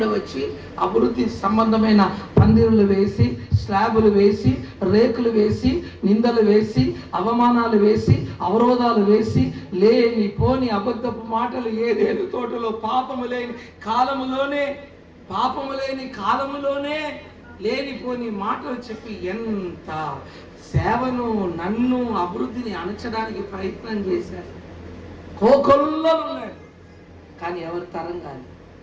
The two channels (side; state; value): both; identical; correlation 1.00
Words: వచ్చి అభివృద్ధి సంబంధమైన పందిరులు వేసి, స్లాబులు వేసి, రేకులు వేసి, నిందలు వేసి, అవమానాలు వేసి, అవరోధాలు వేసి, లేని పోని అబద్ధపు మాటలు ఏదేని తోటలో పాపము లేని కాలములోనే లేనిపోని మాటలు చెప్పి ఎంత సేవను, నన్ను, అభివృద్ధిని అణచడానికి ప్రయత్నం చేశారు. కోకొల్లలు ఉన్నారు, కానీ ఎవరు తరం కాదు.